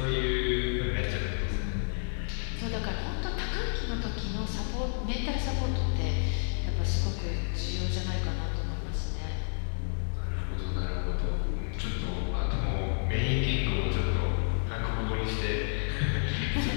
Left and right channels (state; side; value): silent; right; digital silence